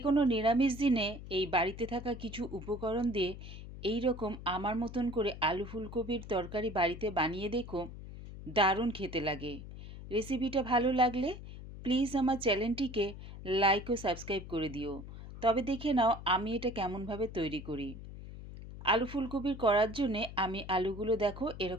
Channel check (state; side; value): noise; left; hum, 12 dB below the sound